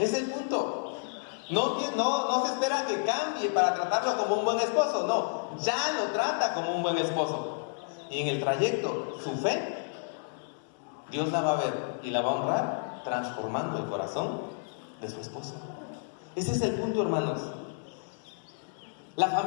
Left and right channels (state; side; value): silent; right; digital silence